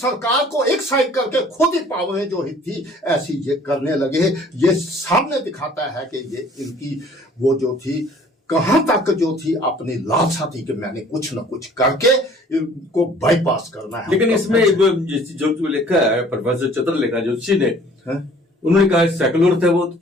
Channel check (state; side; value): normal; both; correlation 0.53